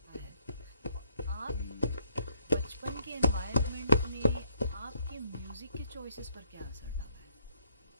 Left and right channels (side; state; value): both; inverted; correlation -0.70